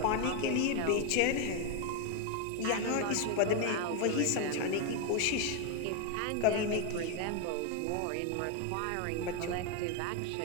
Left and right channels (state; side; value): different; both; correlation 0.01